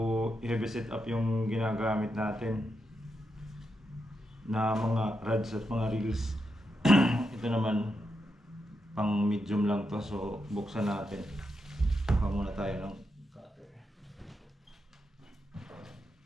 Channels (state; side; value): normal; both; correlation 0.85